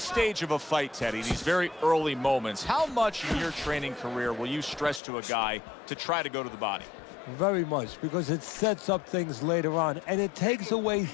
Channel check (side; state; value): right; drops out; at 5.0 s